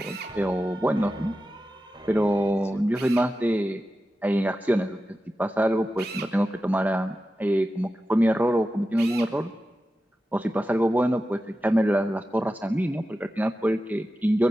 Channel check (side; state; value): both; normal; correlation 0.92